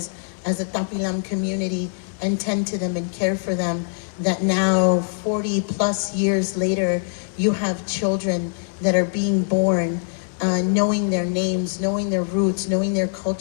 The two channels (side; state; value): right; silent; digital silence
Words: a Tapilam community and tend to them and care for them, that now 40 plus years later, you have children that are being born knowing their names, knowing their roots, knowing their